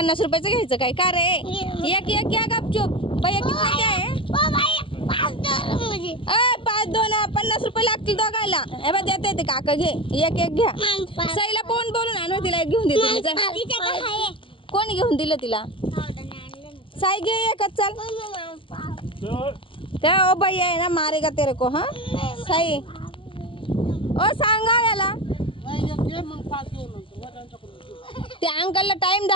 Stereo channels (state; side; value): late; right; 0.25 ms